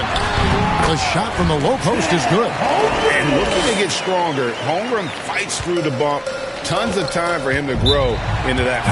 The shot from the low post is good. And looking to get stronger, Holmgren fights through the bump. Tons of time for him to grow into that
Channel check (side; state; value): both; identical; correlation 1.00